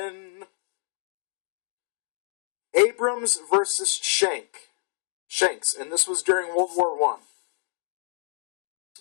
Abrams versus Shanks, and this was during World War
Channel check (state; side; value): silent; right; 60 dB below the other